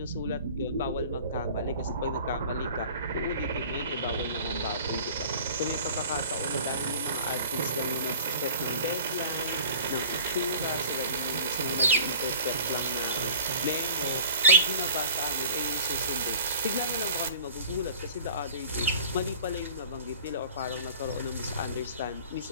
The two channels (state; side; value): inverted; both; correlation -0.43